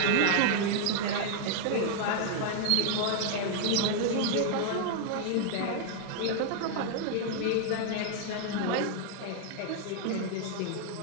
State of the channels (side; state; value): both; different; correlation 0.00